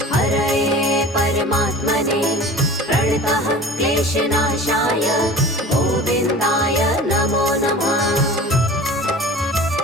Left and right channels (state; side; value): normal; both; correlation 0.39